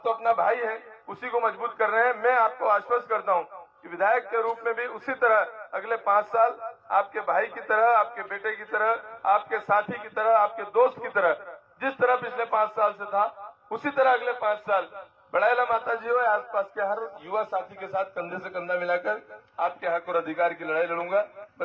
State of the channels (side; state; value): both; identical; correlation 1.00